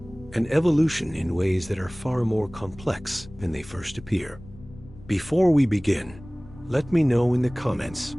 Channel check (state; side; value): noise; left; rumble, 19 dB below the sound